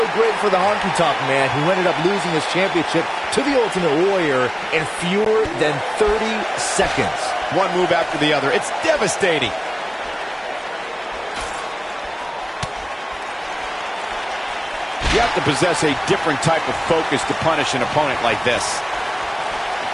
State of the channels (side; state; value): both; identical; correlation 1.00